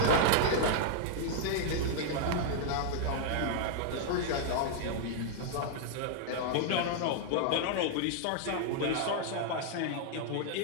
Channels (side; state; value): both; different; correlation -0.01